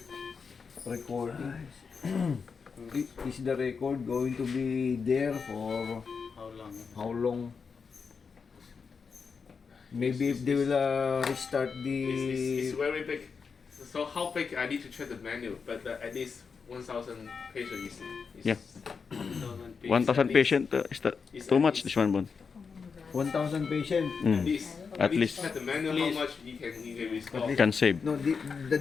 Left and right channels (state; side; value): quieter; right; 5.5 dB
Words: recording. Is the record going to be there for How long? how long? Maybe if they will restart It's the very big. So how big I need to check the menu, but at least 1,000 pages is Yeah. 1,000 1,000 patient is that It's too at much? least- This one, Bon. 1,000 patient. At least. I At need least to check the menu how much you can restore. can save. No, the